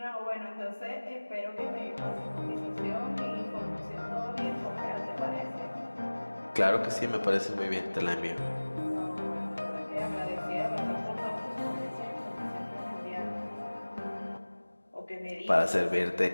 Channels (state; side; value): inverted; both; correlation -1.00